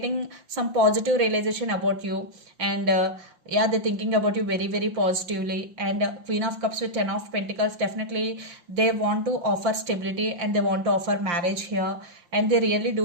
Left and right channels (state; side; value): late; left; 5.7 ms